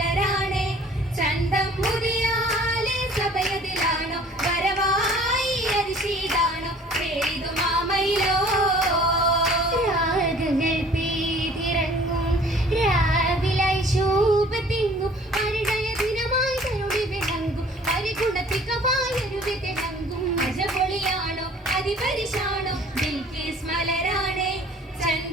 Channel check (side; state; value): both; normal; correlation 0.51